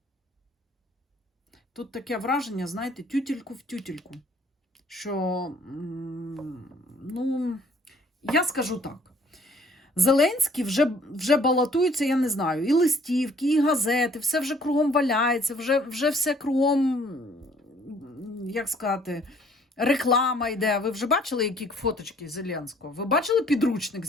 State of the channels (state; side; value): normal; both; correlation 0.59